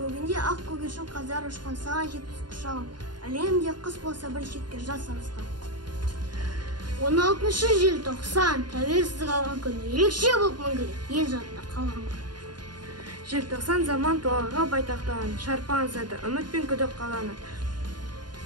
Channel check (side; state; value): left; late; 0.70 ms